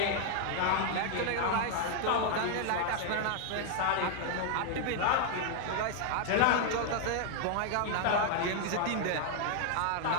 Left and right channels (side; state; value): both; different; correlation 0.00